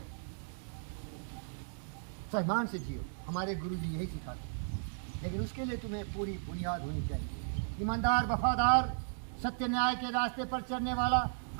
सम्मान से जियो। हमारे गुरु जी यही सिखाते हैं। लेकिन उसके लिए तुम्हें पूरी बुनियाद होनी चाहिए। ईमानदार, वफादार, सत्य न्याय के रास्ते पर चलने वाला,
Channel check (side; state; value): left; silent; digital silence